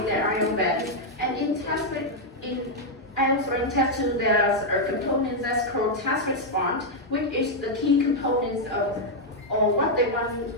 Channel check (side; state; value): both; normal; correlation -0.02